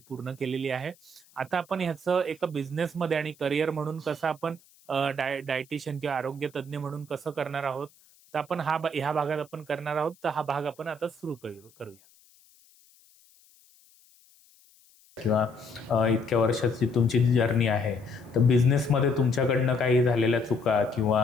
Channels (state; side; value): noise; left; hiss, 29 dB below the sound